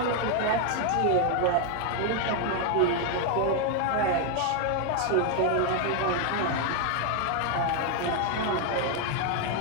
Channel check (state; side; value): different; both; correlation 0.01